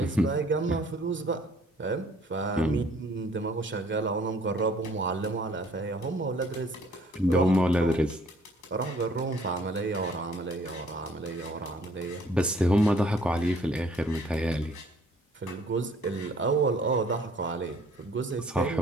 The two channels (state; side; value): normal; both; correlation 0.58